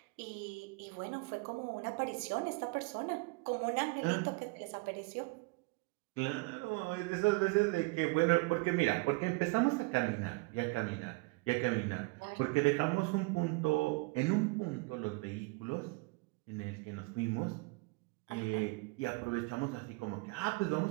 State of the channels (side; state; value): left; quieter; 26.5 dB